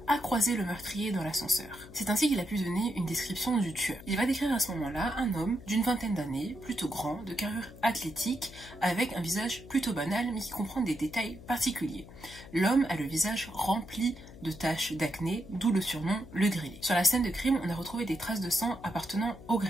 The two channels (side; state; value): left; noise; hum, 17 dB below the sound